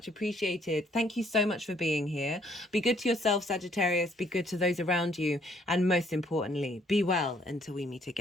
appreciated. Thank you so much for being here. Be good to yourself, Sagittarius. Be good to those around you. And most importantly, be well until we meet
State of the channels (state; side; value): normal; both; correlation 0.65